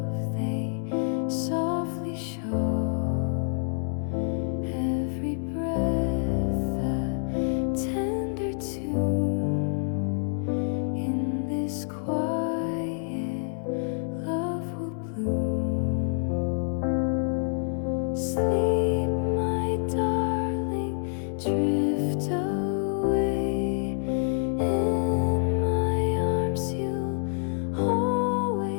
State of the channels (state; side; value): silent; right; 59 dB below the other